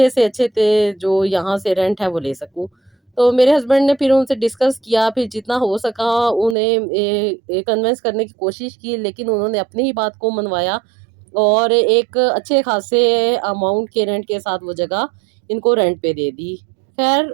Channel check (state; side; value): drops out; left; at 6.6 s